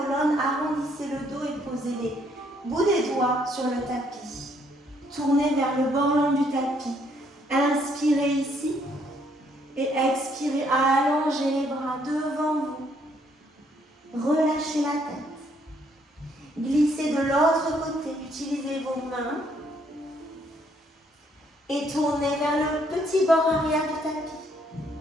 arrondissez le dos et posez les bouts des doigts sur le tapis. Tournez vers le bord long du tapis. Inspirez ici et expirez, allongez les bras devant vous. Relâchez la tête. Glissez de l'autre côté, utilisez vos mains et tournez vers le petit bord arrière du tapis.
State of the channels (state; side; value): normal; both; correlation 0.69